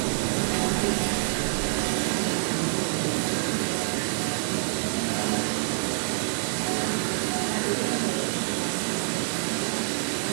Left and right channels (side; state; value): left; silent; digital silence